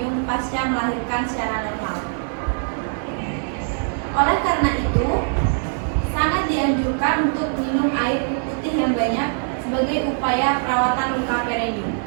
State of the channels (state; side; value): silent; left; 64 dB below the other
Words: pasca melahirkan secara normal. Oleh karena itu, sangat dianjurkan untuk minum air putih yang banyak sebagai upaya perawatan luka perineum.